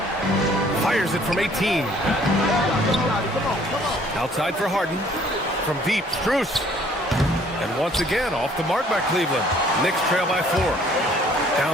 Fires it from 18. Outside for Harden. From deep, Strus. And once again, off the mark by Cleveland. Knicks trail by 4.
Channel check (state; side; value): normal; both; correlation 0.58